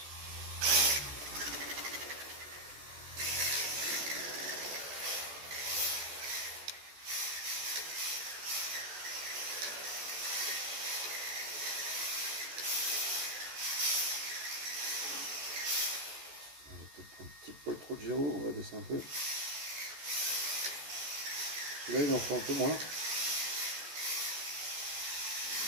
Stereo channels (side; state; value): left; late; 14 ms